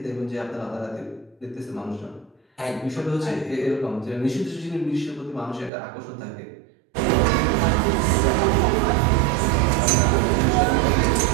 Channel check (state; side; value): drops out; left; at 5.7 s